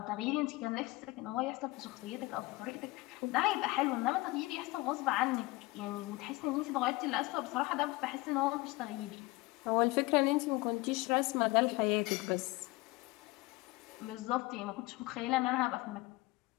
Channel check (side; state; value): right; quieter; 21.6 dB